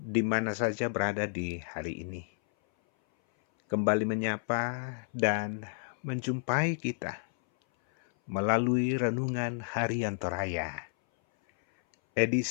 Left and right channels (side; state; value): right; silent; 57 dB below the other